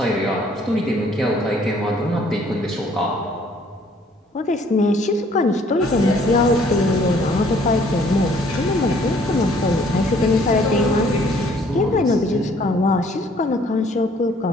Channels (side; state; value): both; normal; correlation 0.60